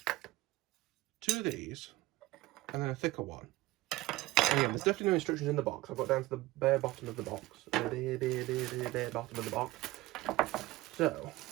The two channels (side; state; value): left; quieter; 18.7 dB